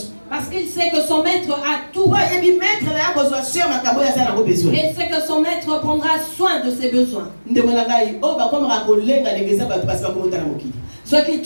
Parce qu'il sait que son maître a tout. Et il sait que son maître prendra soin de ses besoins. Ceux qui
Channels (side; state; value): both; inverted; correlation -1.00